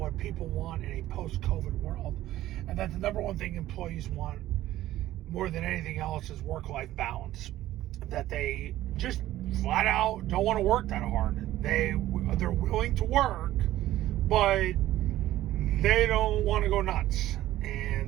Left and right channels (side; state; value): left; quieter; 14.5 dB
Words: people want in a post-COVID world, and that the number one thing employees want more than anything else is work-life balance. That they just flat out don't want to work that hard. They're willing to work, but they don't want to go nuts,